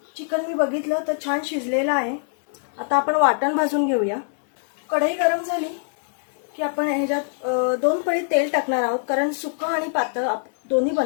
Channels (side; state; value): right; silent; digital silence